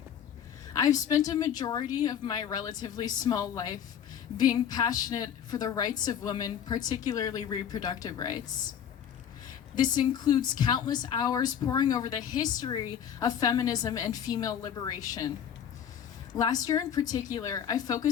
I've spent a majority of my relatively small life being passionate for the rights of women, particularly reproductive rights. This includes countless hours poring over the history of feminism and female liberation. Last year in particular, I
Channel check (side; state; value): right; quieter; 8.8 dB